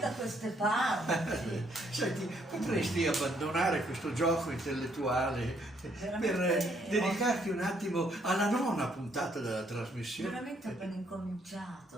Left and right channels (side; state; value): both; normal; correlation 0.70